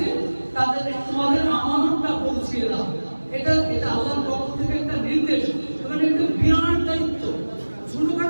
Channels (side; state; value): both; inverted; correlation -1.00